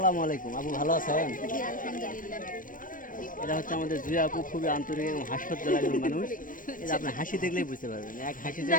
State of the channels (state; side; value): late; right; 0.40 ms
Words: আলাইকুম আপু, ভালো আছেন? এটা হচ্ছে আমাদের জুয়া আপু, খুবই আন্তরিক এবং হাস্যোজ্জ্বল একজন মানুষ। এটা আপনি হাসি দেখলেই বুঝতে পারবেন, এক হাসি দিয়ে